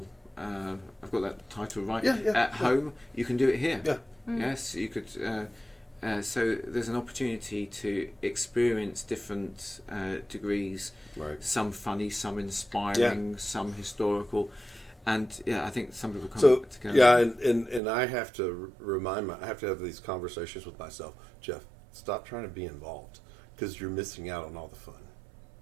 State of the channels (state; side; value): drops out; left; at 17.8 s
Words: I've got that title right. At home, you can do it here. Yeah. Yes, you could. So there's an opportunity to experience different degrees. Right. Some funny, some inspiring, some historical, and I think some people come together. Yeah, and I have to I have to have these conversations with myself. Jeff, stop trying to be involved because you're missing out on all the fun.